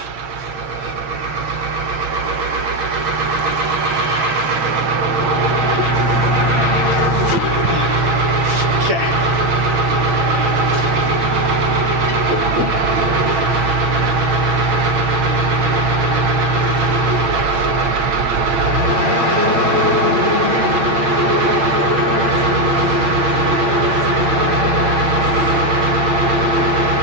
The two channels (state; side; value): late; left; 6.3 ms